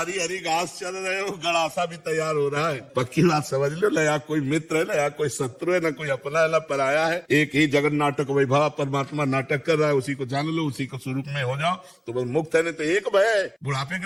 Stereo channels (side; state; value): both; identical; correlation 1.00